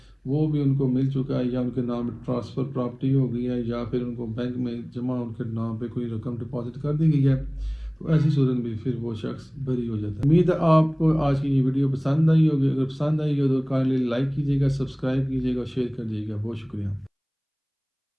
وہ بھی ان کو مل چکا ہے، یا ان کے نام ٹرانسفر پراپرٹی ہو گئی ہے، یا پھر ان کو بینک میں جمع ان کے نام پہ کوئی رقم ڈپازٹ کر دی گئی ہے، تو تو ایسی صورت میں پھر وہ شخص بری ہو جاتا ہے۔ امید ہے آپ کو آج کی یہ ویڈیو پسند آئی ہوگی، اگر پسند آئی ہو تو کائنڈلی لائک کیجیے گا، سبسکرائب کیجیے گا اور شیئر کر دیجیے گا۔ بہت شکریہ۔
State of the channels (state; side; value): identical; both; correlation 1.00